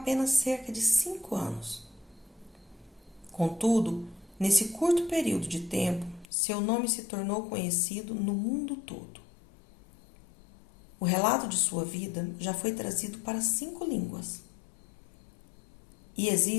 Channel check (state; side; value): drops out; right; at 6.2 s